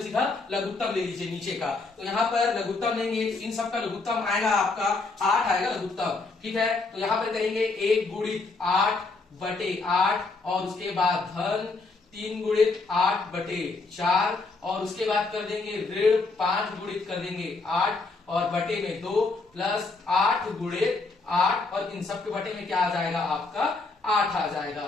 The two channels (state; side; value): quieter; right; 3.7 dB